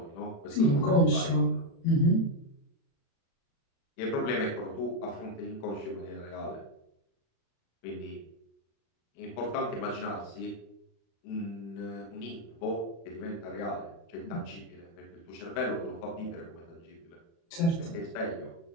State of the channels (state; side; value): late; right; 36 ms